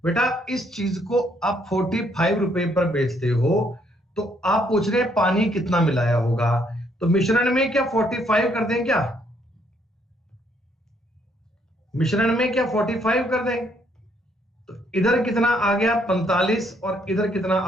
बेटा इस चीज को आप 45 रुपए पर बेचते हो, तो आप पूछ रहे हैं पानी कितना मिलाया होगा, तो मिश्रण में क्या 45 कर दें क्या? मिश्रण में क्या 45 कर दें? तो इधर कितना आ गया 45 और इधर कितना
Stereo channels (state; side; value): normal; both; correlation 0.69